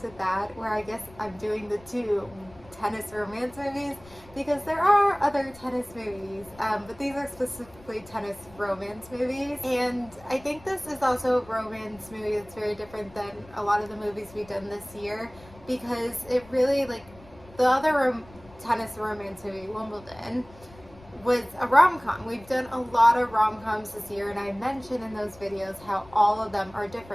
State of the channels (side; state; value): left; noise; rumble, 23 dB below the sound